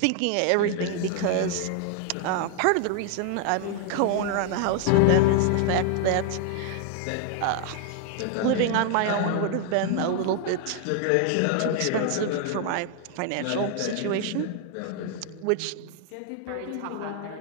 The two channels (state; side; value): different; both; correlation 0.00